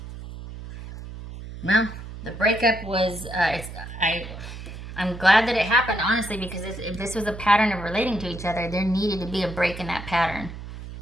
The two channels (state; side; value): noise; right; hum, 11 dB below the sound